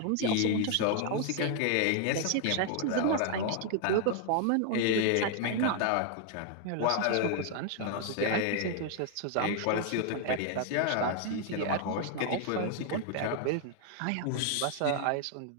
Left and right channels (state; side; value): different; both; correlation 0.00